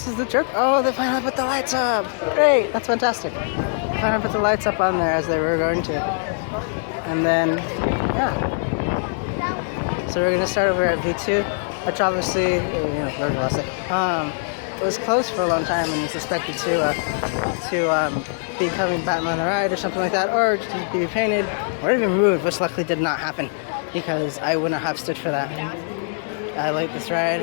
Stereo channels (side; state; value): right; silent; digital silence